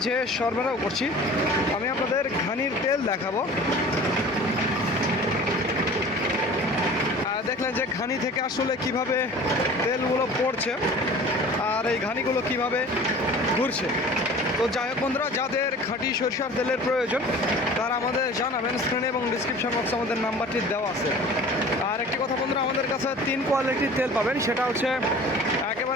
সরবরাহ করছি। আমি আপনাদের ঘানির তেল দেখাবো। দেখলেন যে ঘানি থেকে আসলে কিভাবে তেলগুলো পড়ছে আর এই ঘানিগুলো কিভাবে ঘুরছে। তো যাই হোক বন্ধুরা, যাদের খাঁটি সরিষার তেলের প্রয়োজন তারা আমাদের জানাবেন। স্ক্রিনে এবং ডিসক্রিপশন বক্সে আমাদের নাম্বারটি দেওয়া আছে। আর একটি কথা বন্ধুরা, আমাদের কাছে 3 কোয়ালিটির তেল পাবেন। সেটা হচ্ছে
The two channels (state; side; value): normal; both; correlation 0.43